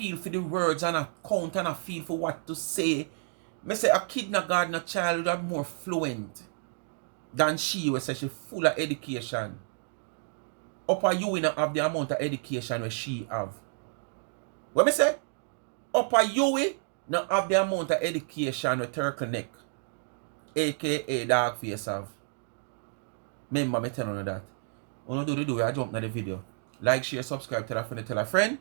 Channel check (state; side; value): silent; left; digital silence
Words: for the words and a count and a feel for what to say, me say a kindergarten child are more fluent than she was say she full of education. Upper you not have the amount of education where she have. What me say? Upper you not have the amount of education with Turkle Neck, A.K.A. dog face have. Remember me telling you that. When you do I jump into the video. Like, share, subscribe, tell a friend, tell a friend.